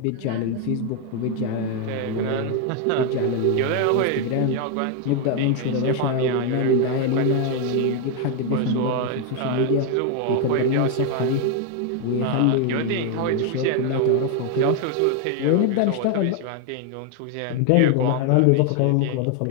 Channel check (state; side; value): different; both; correlation 0.01